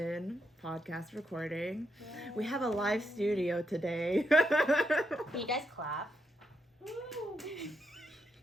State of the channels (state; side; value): normal; both; correlation 0.81